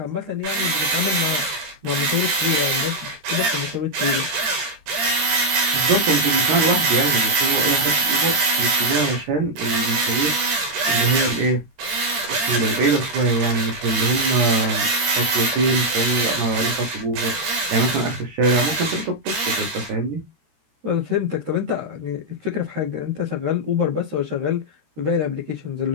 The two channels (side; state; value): left; late; 13 ms